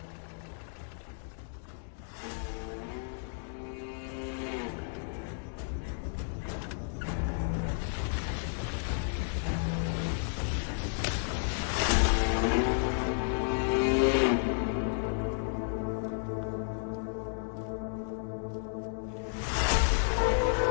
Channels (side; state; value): right; silent; digital silence